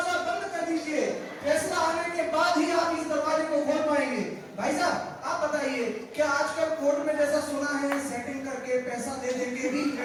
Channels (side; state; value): both; identical; correlation 1.00